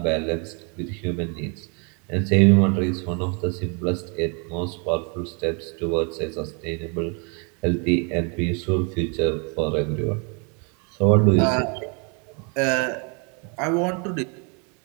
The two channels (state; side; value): quieter; left; 34.9 dB